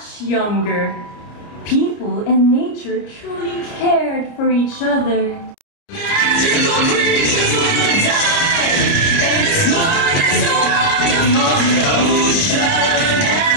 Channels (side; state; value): right; late; 29 ms